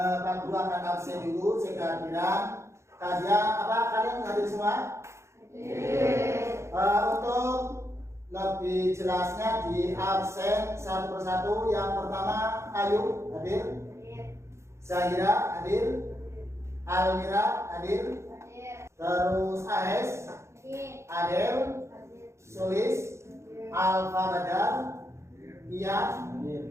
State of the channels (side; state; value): left; late; 0.13 ms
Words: Guru akan absen dulu sekalian. Kalian hadir semua? Untuk lebih jelasnya di absen satu persatu. Yang pertama Ayu hadir, Zahira hadir, Almira hadir, terus Ahes, Adel, Sulis, Alfa Badar, Iya,